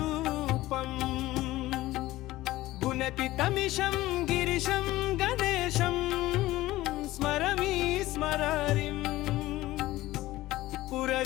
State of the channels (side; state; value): right; quieter; 17.0 dB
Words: गुणतीतमिशं गिरिशं गणेशं स्मरमि स्मरारिम्